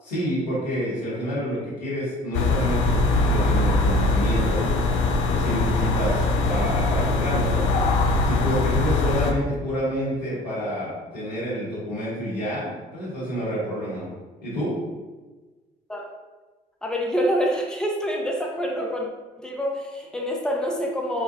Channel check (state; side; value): normal; both; correlation 0.49